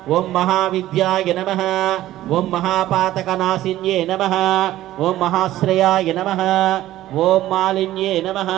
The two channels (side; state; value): left; quieter; 14.6 dB